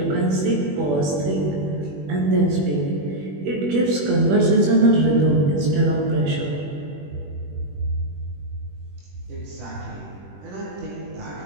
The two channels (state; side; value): late; left; 21 ms